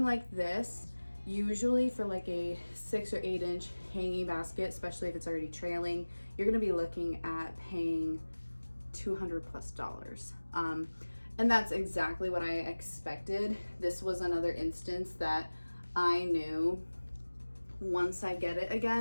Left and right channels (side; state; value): both; inverted; correlation -1.00